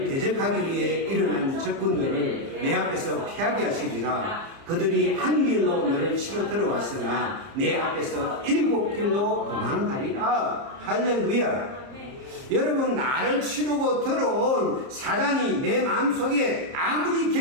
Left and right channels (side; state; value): left; late; 30 ms